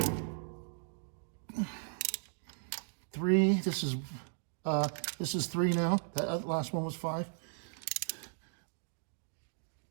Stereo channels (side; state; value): left; silent; digital silence